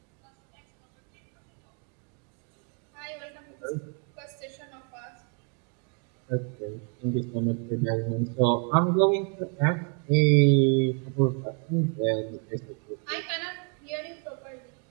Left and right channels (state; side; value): quieter; left; 38.8 dB